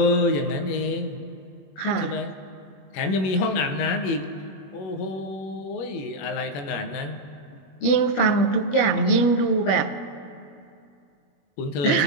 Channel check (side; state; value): right; late; 21 ms